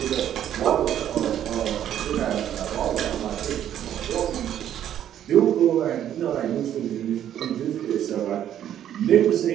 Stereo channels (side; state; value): left; quieter; 10.7 dB